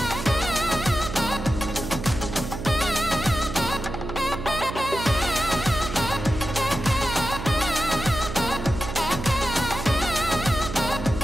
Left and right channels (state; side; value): noise; right; hum, 7 dB below the sound